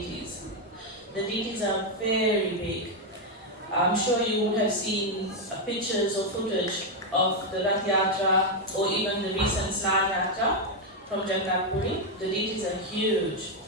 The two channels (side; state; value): both; normal; correlation 0.03